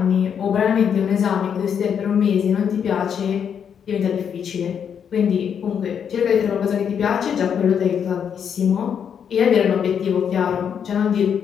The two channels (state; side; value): quieter; right; 7.8 dB